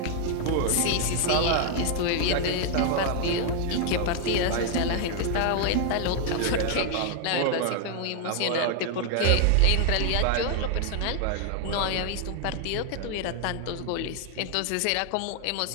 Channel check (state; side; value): different; both; correlation 0.00